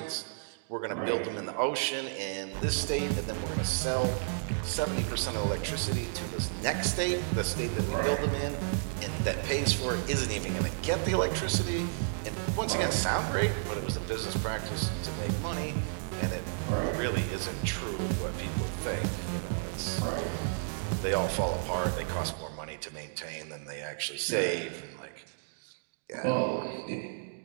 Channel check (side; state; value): left; silent; digital silence